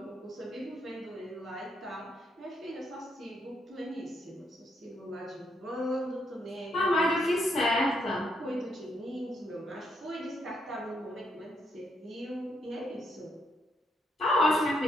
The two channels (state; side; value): normal; both; correlation 0.75